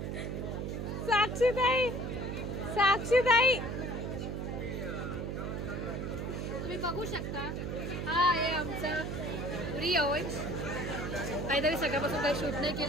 साक्षीताई तुम्ही बघू शकता. हा आहे आमचा रिया ओव्हन्स. काहीतरी सकाळपासून काही शूट नाही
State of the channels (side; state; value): right; noise; hum, 3 dB below the sound